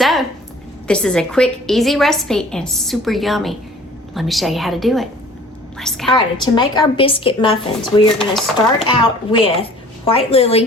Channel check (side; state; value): both; normal; correlation 0.49